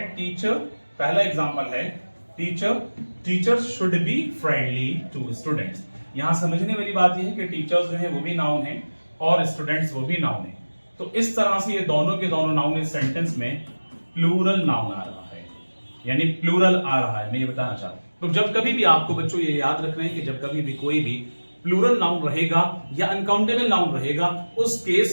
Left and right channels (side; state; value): both; inverted; correlation -1.00